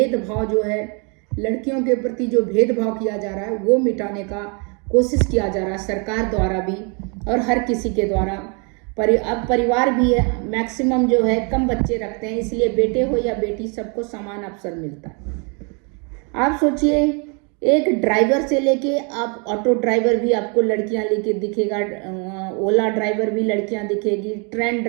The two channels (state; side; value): quieter; left; 35.1 dB